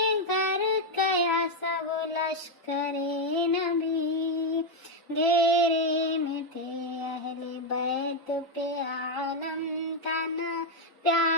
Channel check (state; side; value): normal; both; correlation 0.03